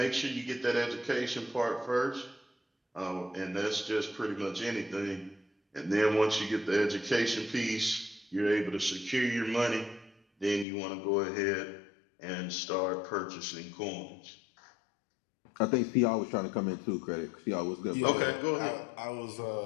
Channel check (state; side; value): drops out; right; at 10.7 s